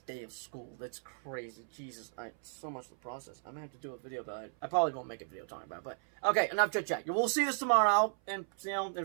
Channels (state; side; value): silent; left; 54 dB below the other